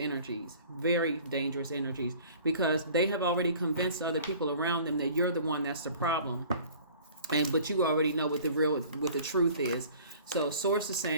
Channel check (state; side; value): inverted; both; correlation -0.48